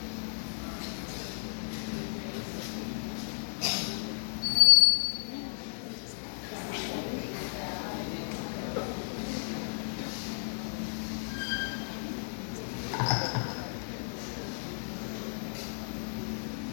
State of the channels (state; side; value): silent; right; digital silence